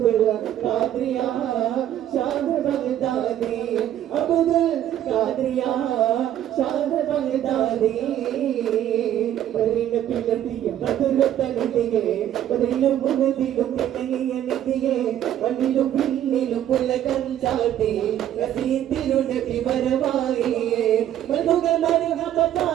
ഖാദിറിയ ഷാദ് ബഗ്ദാദി അബ്ദുൽ ഖാദിറിയ ഷാദ് ബഗ്ദാദി പരിന പിലതിയ ബദുലതനിതിയെ പതിലും മുഹദിലും പിന്നങ്ങിയ നിതിയെ വന്നിലും പിന്നിലും പുലകം ചാട്ടി റസീതിരു നബി വരവായിയെ മധുകൾ മരഹബ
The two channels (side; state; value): left; quieter; 11.4 dB